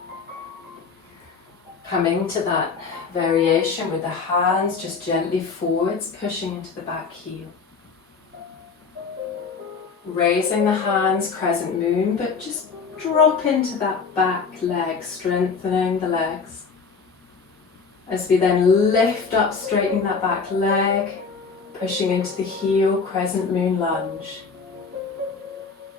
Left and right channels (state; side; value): quieter; right; 5.2 dB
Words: Coming to that variation with the hands just gently forwards, pushing into the back heel. Raising the hands, crescent moon, but just drop into that back leg, strengthening the legs. As we then lift up, straightening that back leg, pushing into the heel, crescent moon lunge.